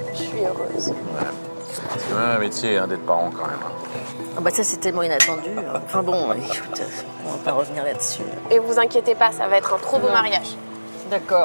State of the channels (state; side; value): inverted; both; correlation -1.00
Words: Je suis heureuse. C'est quand même un métier hein, d'être parent, quand même. hein. Ah bah ça, c'est tellement inattendu. Enfin bon, écoute, on va pas revenir là-dessus. Et vous inquiétez pas, ça va être un trop beau mariage.